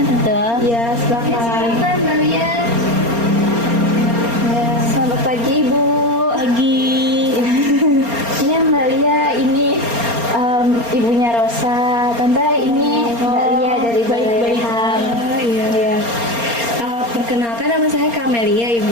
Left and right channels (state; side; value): late; left; 4.3 ms